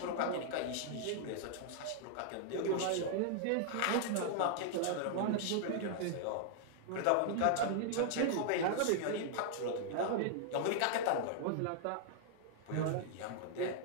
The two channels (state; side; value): different; both; correlation -0.01